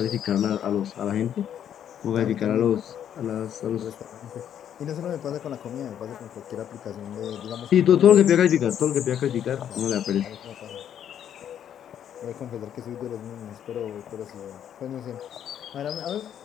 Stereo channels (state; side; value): quieter; right; 9.7 dB